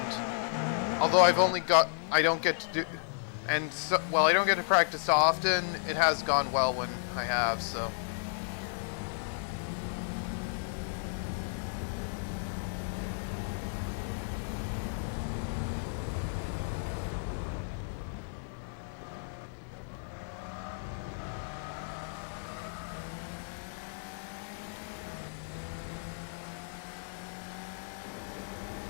Although I've only got... I don't get to do... And, so, well, I don't get to practice often, it has gone well when I have, so...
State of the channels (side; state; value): right; silent; 56 dB below the other